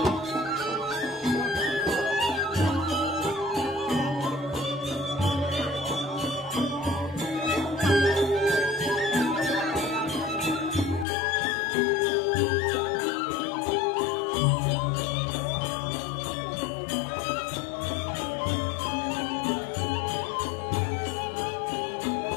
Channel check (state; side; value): drops out; right; at 11.1 s